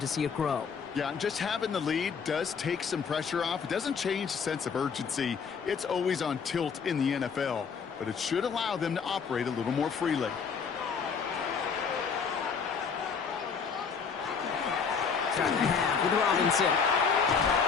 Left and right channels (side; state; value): right; quieter; 6.0 dB